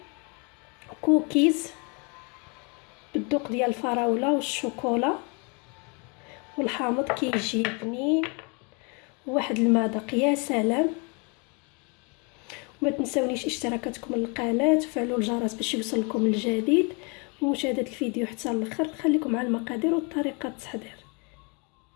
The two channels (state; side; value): quieter; right; 32.8 dB